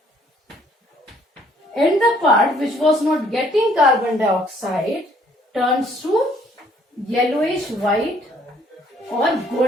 And the part which was not getting carbon dioxide turns to yellowish white और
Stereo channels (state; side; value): normal; both; correlation 0.63